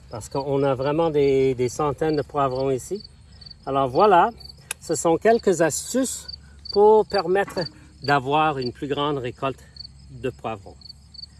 Parce qu'on a vraiment des centaines de poivrons ici. Alors voilà, ce sont quelques astuces pour permettre d'avoir une plus grande récolte de poivrons.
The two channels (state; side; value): identical; both; correlation 1.00